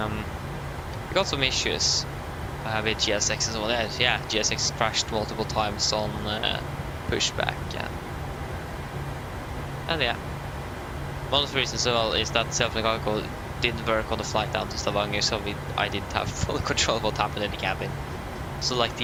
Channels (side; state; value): both; identical; correlation 1.00